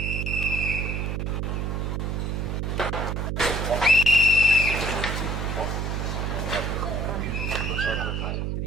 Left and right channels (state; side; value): noise; right; hum, 1 dB below the sound